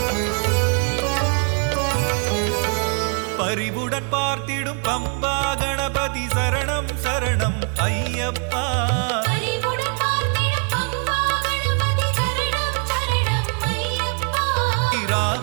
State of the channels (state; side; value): quieter; left; 39.4 dB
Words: பரிவுடன் பார்த்திடும் பம்பா கணபதி சரணம் சரணம் ஐயப்பா. அறிவுடன் பார்த்திடும் பம்பா கணபதி சரணம் சரணம் ஐயப்பா.